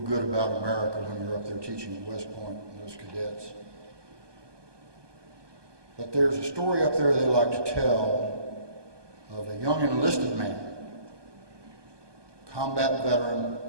about America when you're up there teaching at West Point and those cadets. But there's a story up there they like to tell of a young enlisted man, combat veteran,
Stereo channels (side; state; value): left; late; 1.2 ms